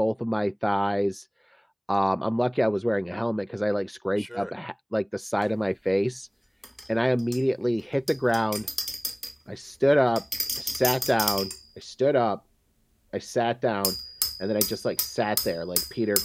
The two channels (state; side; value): identical; both; correlation 1.00